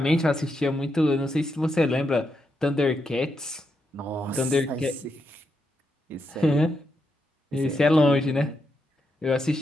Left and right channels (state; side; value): normal; both; correlation 0.82